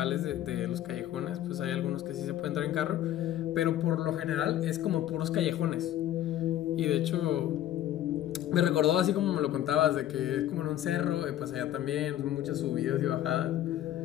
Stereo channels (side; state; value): right; quieter; 12.4 dB